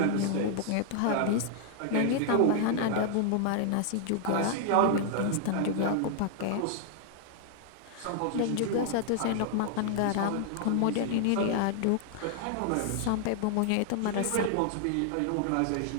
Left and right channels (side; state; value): both; different; correlation 0.00